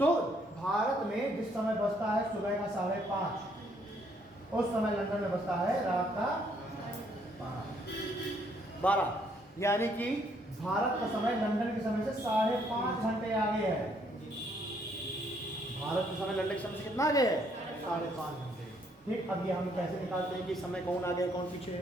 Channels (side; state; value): both; normal; correlation 0.68